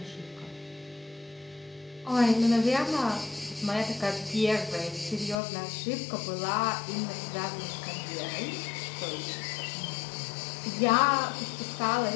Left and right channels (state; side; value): drops out; right; at 5.4 s